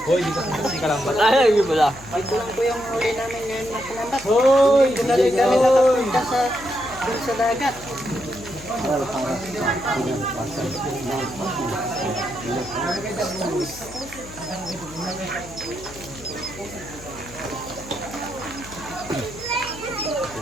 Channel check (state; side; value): noise; left; hum, 17 dB below the sound